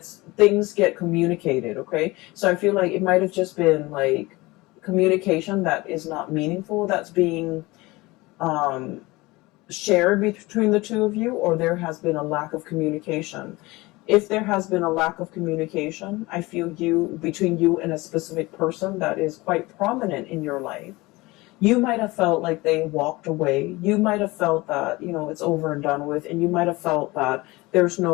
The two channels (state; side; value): quieter; right; 21.7 dB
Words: get communicated, okay? So I feel like it might have just been like communication that is not meaningful, that's being shared between the two of you, or there has been a lack of communication. If there has been a lack of communication, I feel between you and a specific person that is quite prominent in your life, You might have felt like they walked away. You might have felt that, it's over and done with. And you might have felt that there's